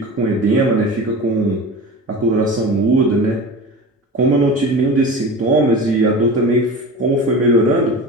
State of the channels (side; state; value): both; normal; correlation 0.32